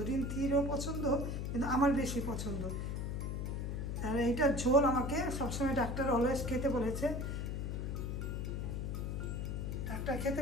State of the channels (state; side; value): noise; left; hum, 2 dB below the sound